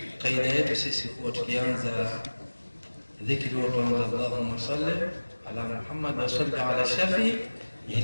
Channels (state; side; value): inverted; both; correlation -1.00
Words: kaida yetu sisi huwa tukianza dhikri huwa tuanza Allahumma salli ala Muhammad wa salli ala shafi